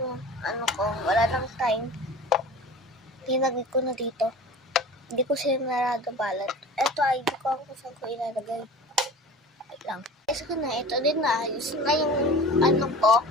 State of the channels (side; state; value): both; normal; correlation 0.38